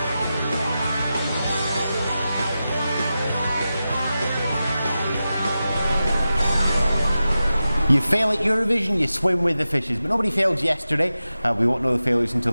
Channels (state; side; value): inverted; both; correlation -0.93